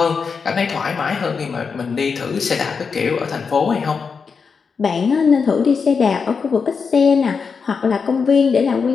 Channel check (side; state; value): right; quieter; 5.5 dB